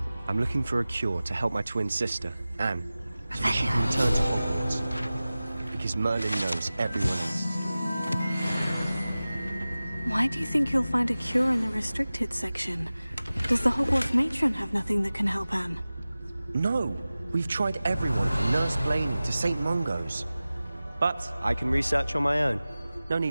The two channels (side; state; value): both; inverted; correlation -0.97